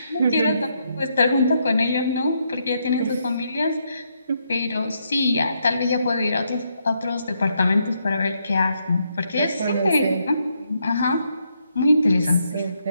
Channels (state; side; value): inverted; both; correlation -0.77